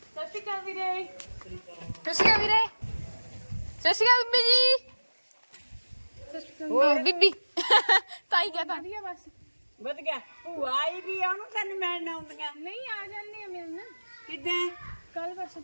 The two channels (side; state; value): both; inverted; correlation -1.00